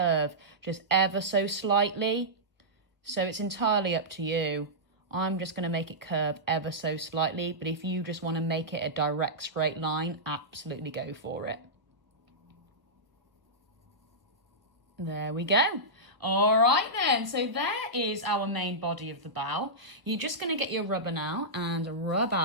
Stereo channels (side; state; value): left; late; 1.1 ms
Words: just ever so slightly. So it's entirely up to you. I'm just going to make it curve ever so slightly, but if you just want to make it a direct straight line, absolutely go for it. There we go. All right then, so there is our main body of the bow. You're just going to get your rubber now and rub